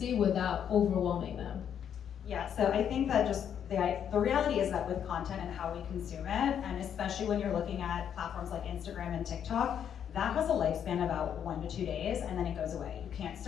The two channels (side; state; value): right; quieter; 8.8 dB